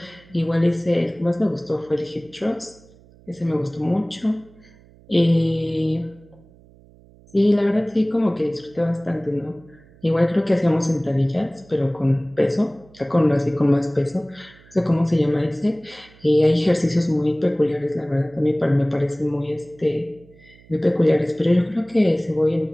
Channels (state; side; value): noise; right; hum, 26 dB below the sound